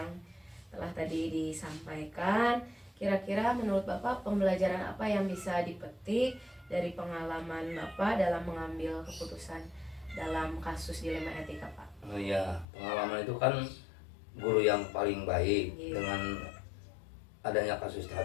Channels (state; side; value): drops out; right; at 12.7 s